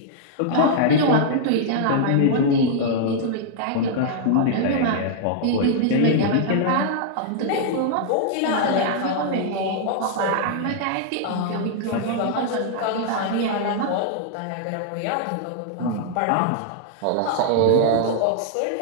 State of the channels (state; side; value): different; both; correlation -0.01